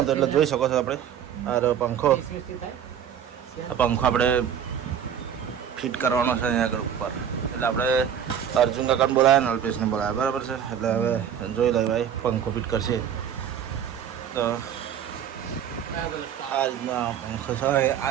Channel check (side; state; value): left; quieter; 8.8 dB